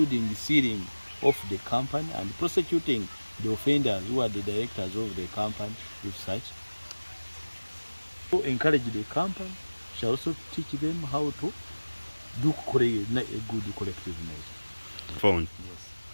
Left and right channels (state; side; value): inverted; both; correlation -1.00